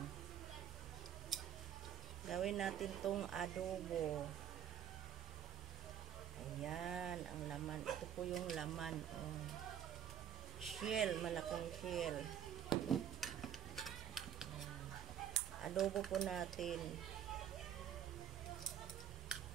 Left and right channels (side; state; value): left; quieter; 9.4 dB